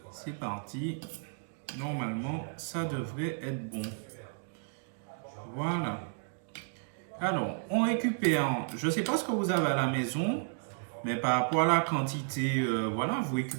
C'est parti. Normalement, ça devrait être bon. Voilà. Alors, on récupère, je ne sais pas ce que vous avez à la maison, mais par rapport à la quantité, voilà, vous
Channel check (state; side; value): silent; left; digital silence